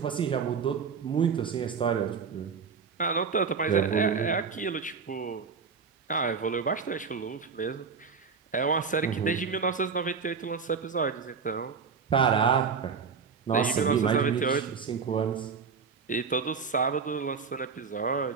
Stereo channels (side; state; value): left; quieter; 5.7 dB